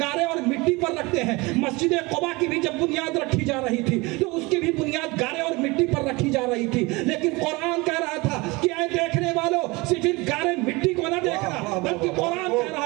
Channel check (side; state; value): left; quieter; 24.2 dB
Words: گارے اور مٹی پر رکھتے ہیں. مسجد قباء کی بھی جب بنیاد رکھی جا رہی تھی تو اس کی بھی بنیاد گارے اور مٹی پر رکھی جا رہی تھی. لیکن قرآن کہہ رہا تھا کہ اے دیکھنے والوں صرف گارے مٹی کو نہ دیکھنا، بلکہ قرآن کہہ